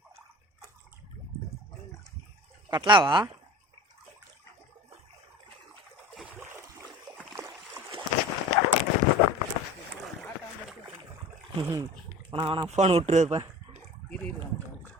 கட்லாவா? வேணா ஃபோன் விட்டுருப்பேன்.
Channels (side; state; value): both; normal; correlation 0.39